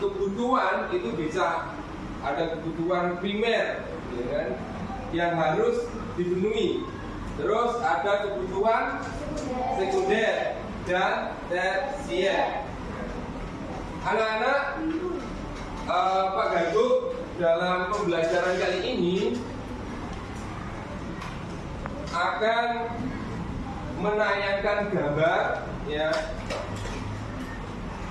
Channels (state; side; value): identical; both; correlation 1.00